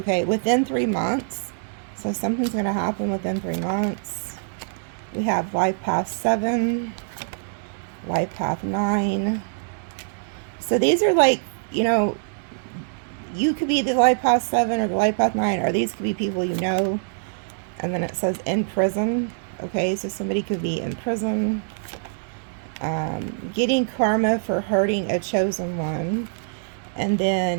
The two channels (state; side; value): silent; left; digital silence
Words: within 3 months. So something's going to happen within 3 months. We have life path 7, life path 9. So these are like, you know, you could be the life path 7 or the life path 9, or these could be people you know. And then it says in prison. Okay, so somebody could be in prison. Getting karma for hurting a chosen one. And